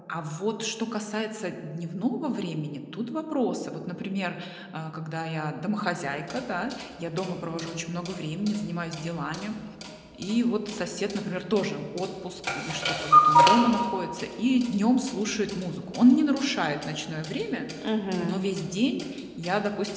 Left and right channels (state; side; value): identical; both; correlation 1.00